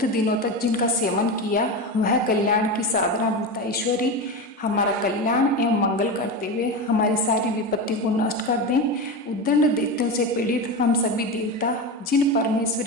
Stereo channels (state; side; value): normal; both; correlation 0.21